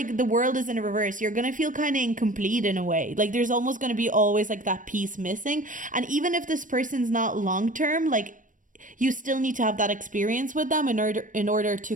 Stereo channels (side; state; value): left; late; 0.38 ms